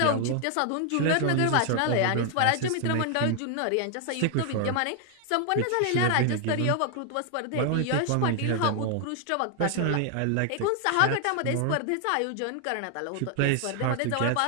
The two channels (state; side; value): different; both; correlation 0.00